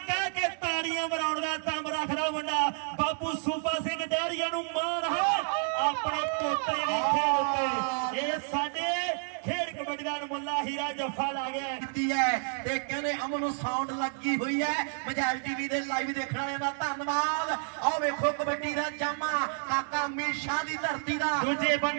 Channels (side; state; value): left; silent; 58 dB below the other